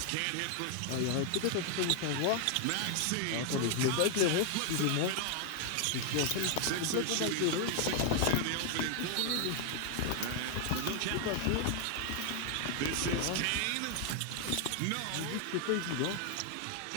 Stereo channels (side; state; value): both; different; correlation 0.00